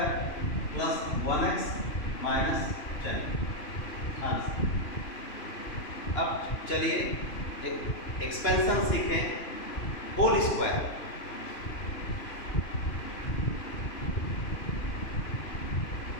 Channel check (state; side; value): late; right; 3.0 ms